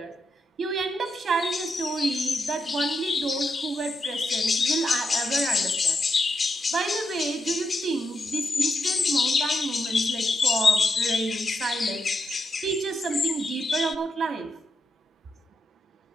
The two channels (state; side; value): normal; both; correlation 0.84